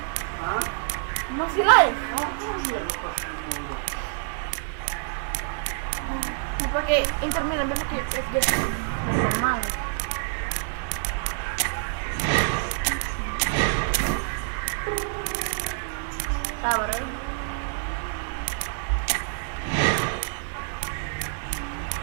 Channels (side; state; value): left; silent; digital silence